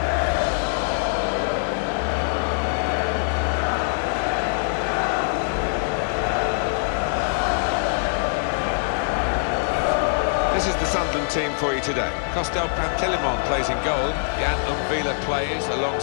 This is the Sunderland team for you today. Costel Pantelimon plays in goal. Jan Umvila plays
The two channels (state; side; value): silent; right; digital silence